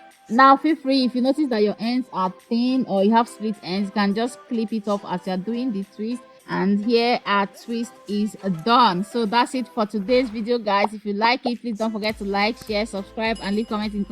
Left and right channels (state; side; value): identical; both; correlation 1.00